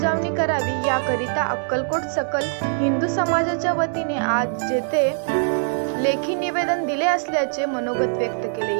करावी। याकरिता अक्कलकोट सकल हिंदू समाजाच्या वतीने आज जेथे लेखी निवेदन दिले असल्याचे मनोगत व्यक्त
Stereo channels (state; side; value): silent; left; digital silence